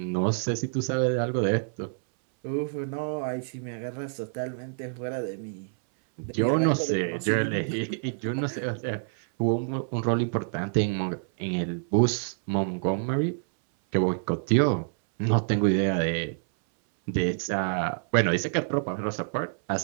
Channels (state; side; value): silent; left; 60 dB below the other